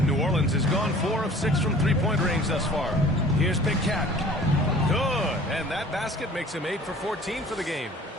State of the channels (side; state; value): both; normal; correlation 0.48